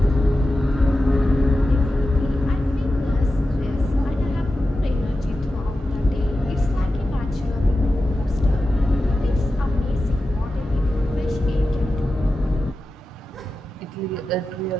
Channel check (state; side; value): normal; both; correlation 0.92